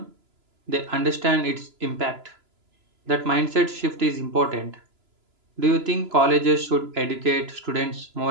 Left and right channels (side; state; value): left; late; 3.0 ms